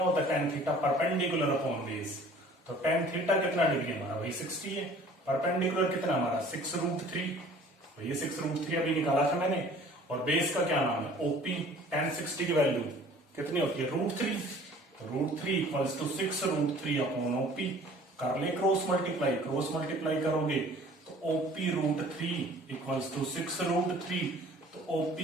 होता है tan theta, perpendicular upon base. तो टेन थीटा कितना डिग्री हमारा, वही 60 है। परपेंडिकुलर कितना हमारा 6√3, ये 6√3 अभी निकाला था मैंने। और बेस का क्या नाम है, ओपी। टेन 60 की वैल्यू कितनी होती है, √3। √3 इक्वल्स टू 6√3 अपॉन ओपी। कर ले क्रॉस मल्टीप्लाई करोगे तो ओपी √3 इक्वल्स टू 6√3। तो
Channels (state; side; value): normal; both; correlation 0.50